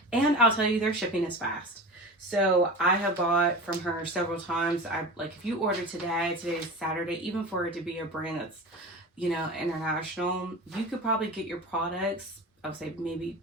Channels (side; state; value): both; normal; correlation 0.31